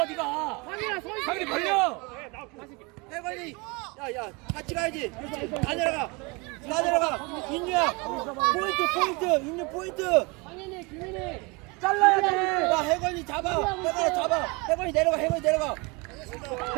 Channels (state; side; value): quieter; left; 27.9 dB